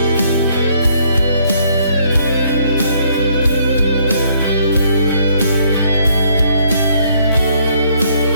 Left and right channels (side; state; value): both; inverted; correlation -0.67